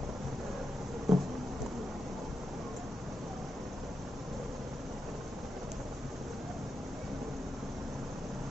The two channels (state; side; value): normal; both; correlation 0.88